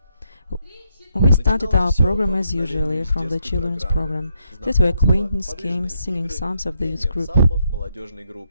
We started our program as usually from the children's program. That were acquaintance games, singing psalms of the youth group.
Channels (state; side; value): inverted; both; correlation -0.78